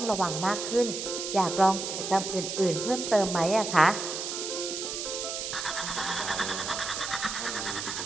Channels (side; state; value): right; noise; hiss, 5 dB below the sound